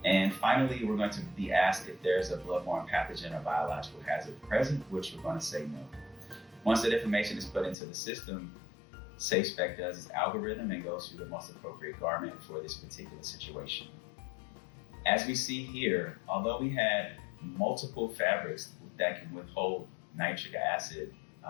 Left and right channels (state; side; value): drops out; right; at 7.8 s